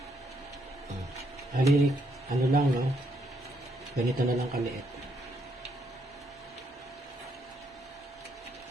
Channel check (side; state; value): both; normal; correlation 0.74